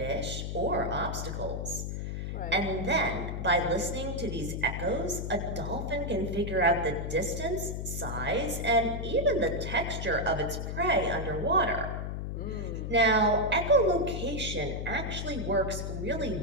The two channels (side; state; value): left; noise; hum, 4 dB below the sound